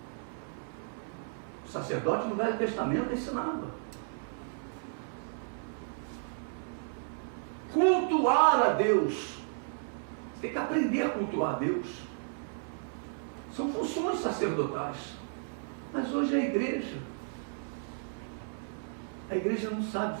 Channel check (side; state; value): left; silent; 56 dB below the other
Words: O sacerdote no Velho Testamento ensinava. Cultuar a Deus. Você tem que aprender a cultuar a Deus. São funções sacerdotais. Mas hoje a igreja não